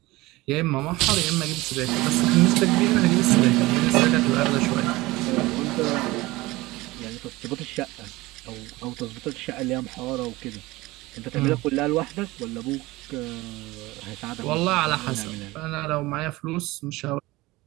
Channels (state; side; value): quieter; left; 20.3 dB